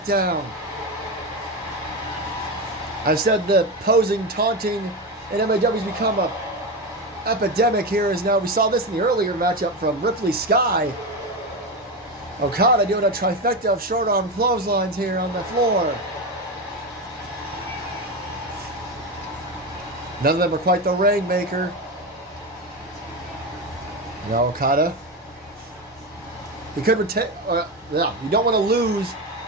down. I've said the posing, taunting in MAW has become a epidemic here. As now we saw this in the earlier matchup from Ripley Sky. Okada doing a trifecta of short arm clotheslines here on the floor. None of them are quite the Rainmaker. Now Okada. He could retain. Yeah, you don't want to lose.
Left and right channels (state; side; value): normal; both; correlation 0.17